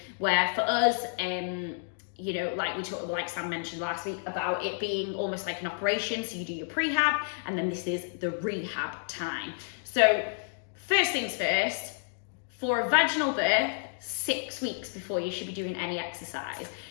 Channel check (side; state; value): right; silent; digital silence